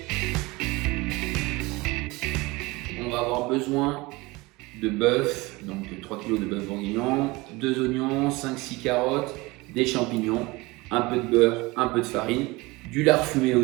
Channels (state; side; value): quieter; left; 22.7 dB